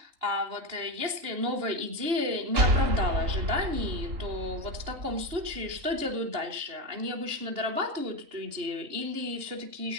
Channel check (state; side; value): late; left; 2.9 ms